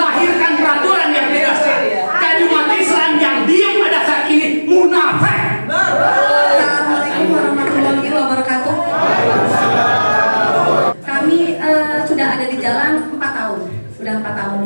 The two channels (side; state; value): both; inverted; correlation -1.00